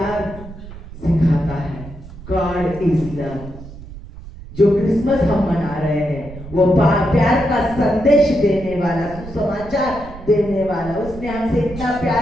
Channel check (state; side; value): noise; right; rumble, 15 dB below the sound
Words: सिखाता है। God is love. जो क्रिसमस हम मना रहे हैं वो प्यार का संदेश देने वाला, सुसमाचार देने वाला। उसने हमसे इतना